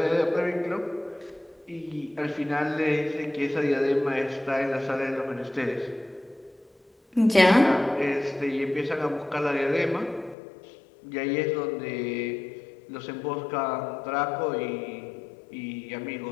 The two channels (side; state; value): right; drops out; at 10.4 s